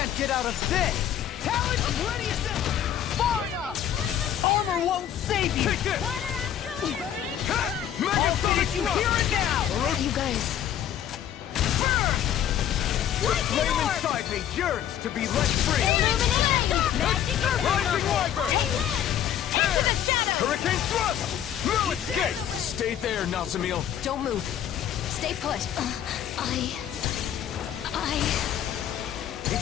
get out of this! Talon, I'm ready as ever! Far enough! Armor won't save you! Take this! Water after lightning! Mega Sonic You Thrust! hear it now! Where are you guys? The flame inside me yearns to be let free! Illuminate the dark! Magic is Rising power! Wyvern! Holy land! Into the shadows! Hurricane Thrust! Now escape! Stay there, Nazamil. Don't move. Stay put.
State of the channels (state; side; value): quieter; right; 10.3 dB